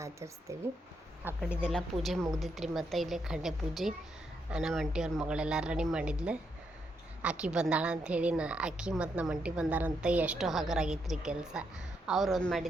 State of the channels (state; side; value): normal; both; correlation 0.79